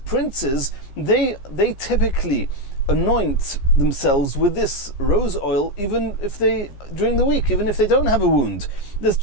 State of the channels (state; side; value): late; right; 15 ms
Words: they typically anoint themselves with this rose oil, even if during the week, even if they don't have a wound.